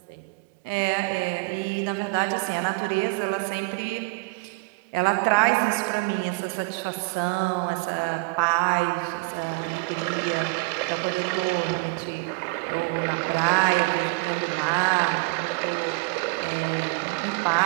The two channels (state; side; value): quieter; left; 28.2 dB